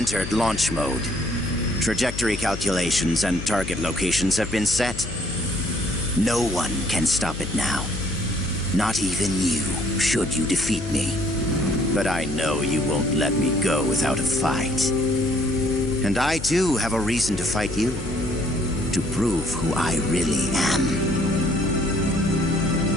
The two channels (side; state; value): left; noise; hum, 9 dB below the sound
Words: launch mode. Trajectory calculations and target locations have been set. No one can stop it now. Not even you, should you defeat me. But I know you won't let me go without a fight. And I too have a reason to fight you. To prove who I really am.